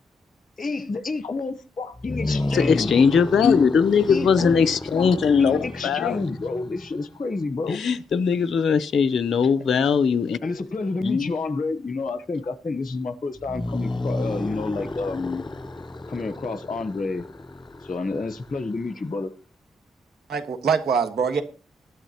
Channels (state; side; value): quieter; right; 4.2 dB